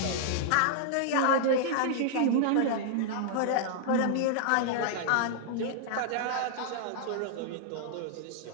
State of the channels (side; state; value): both; different; correlation -0.01